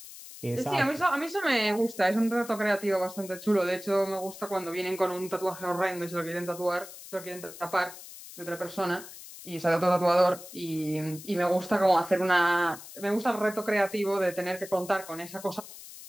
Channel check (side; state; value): left; noise; hiss, 15 dB below the sound